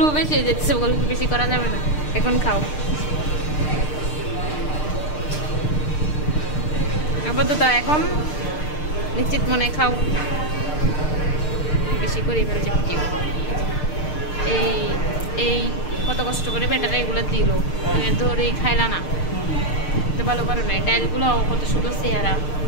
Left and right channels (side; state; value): right; late; 6.6 ms